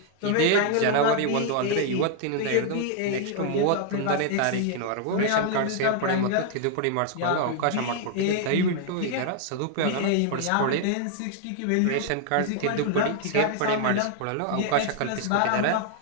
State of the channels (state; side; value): different; both; correlation 0.00